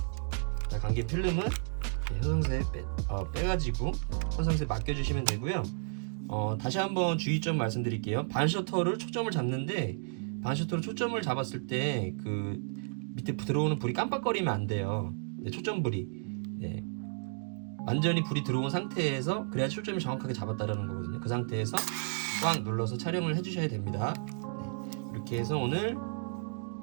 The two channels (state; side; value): silent; left; digital silence